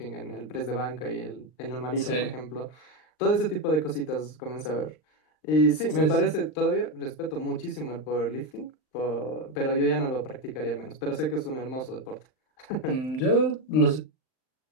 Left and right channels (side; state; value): right; late; 39 ms